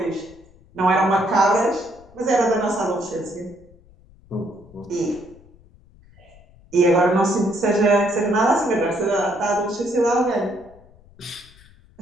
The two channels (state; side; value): noise; left; rumble, 26 dB below the sound